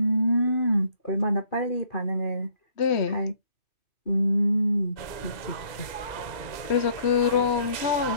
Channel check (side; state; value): right; late; 2.1 ms